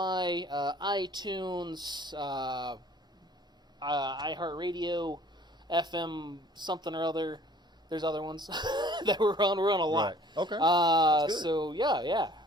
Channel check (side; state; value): both; normal; correlation 0.53